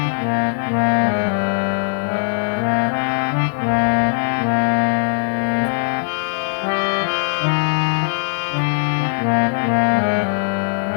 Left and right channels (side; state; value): right; silent; 62 dB below the other